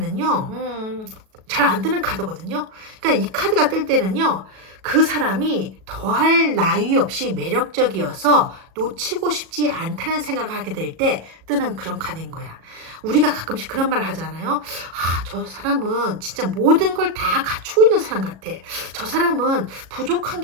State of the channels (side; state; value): left; late; 37 ms